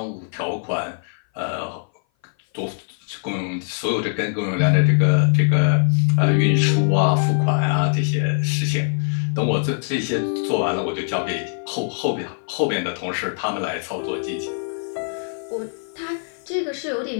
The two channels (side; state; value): right; silent; 58 dB below the other